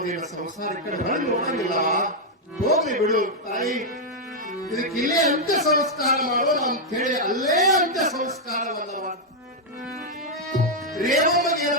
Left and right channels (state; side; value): normal; both; correlation -0.02